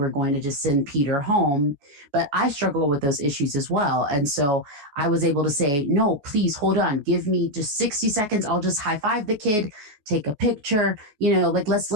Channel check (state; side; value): late; left; 14 ms